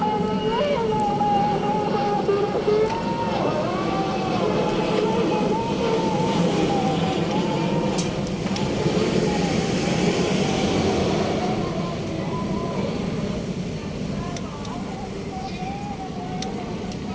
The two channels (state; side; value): identical; both; correlation 1.00